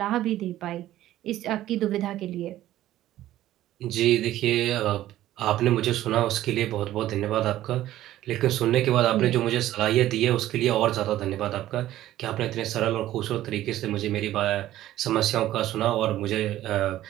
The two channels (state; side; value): quieter; left; 14.0 dB